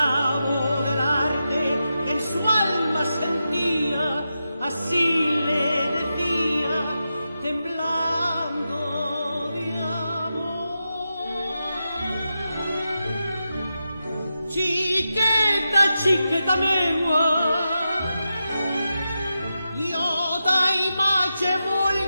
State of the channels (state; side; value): inverted; both; correlation -0.89